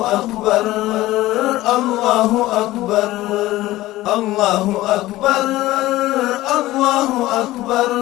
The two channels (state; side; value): quieter; right; 16.9 dB